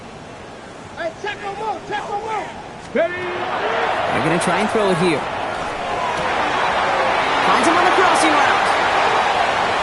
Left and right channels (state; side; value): identical; both; correlation 1.00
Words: Hey, check him out, check him out. Ready. They're going to try and throw it here. Finds him on the crossing route.